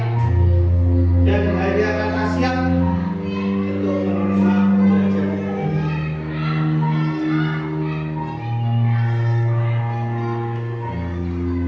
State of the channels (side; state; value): both; identical; correlation 1.00